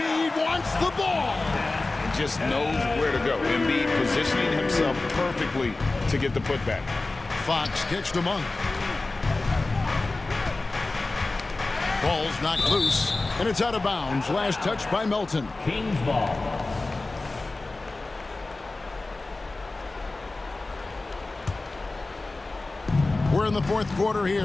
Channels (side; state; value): right; quieter; 3.2 dB